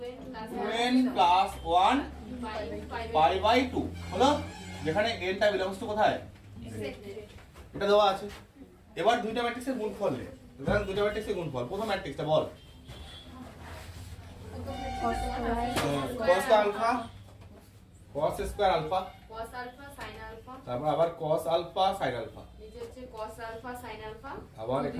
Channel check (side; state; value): both; identical; correlation 1.00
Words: 2n প্লাস 1 পাই বাই 2 হলো, যেখানে n টা বিলংস টু কোথায়? এটা দেওয়া আছে। এবার দুইটা ম্যাট্রিক্সের গুণফল নে। ধরেন দুইটা ম্যাট্রিক্সের গুণফল, প্রথম ম্যাট্রিক্সটা বল। cos alpha cos square alpha cos alpha sin alpha, তারপর আবার cos আলফা sin আলফা, নিচে হচ্ছে cos আলফা sin আলফা, আবার